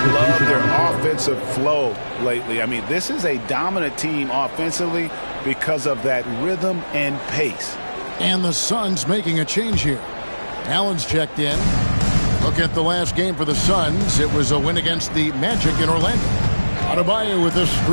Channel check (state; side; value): inverted; both; correlation -1.00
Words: love their offensive flow lately. I mean, this is a dominant team offensively because of that rhythm and pace. And the Suns making a change here. Allen's checked in. Look at the last game for the Suns. It was a win against the Magic in Orlando. Adebayo with a